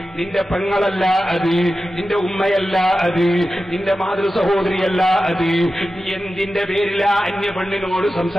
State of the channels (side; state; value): both; normal; correlation 0.93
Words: നിന്റെ പെങ്ങളല്ല അത്, നിന്റെ ഉമ്മയല്ല അത്, നിന്റെ മാതൃ സഹോദരിയല്ല അത്. നീ എന്തിന്റെ പേരില അന്യ പെണ്ണിനോട്